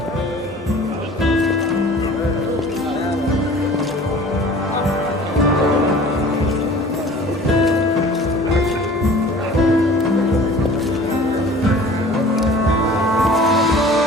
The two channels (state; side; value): normal; both; correlation 0.45